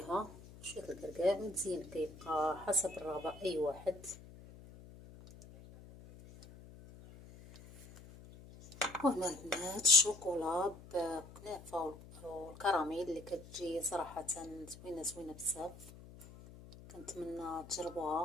شويه الكركاع. والزين كيبقى حسب الرغبه اي واحد. وهنا البنات الشوكولا بكنافه والكراميل اللي كتجي صراحه زوينه بزاف، كنتمنى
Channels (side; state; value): left; noise; hum, 18 dB below the sound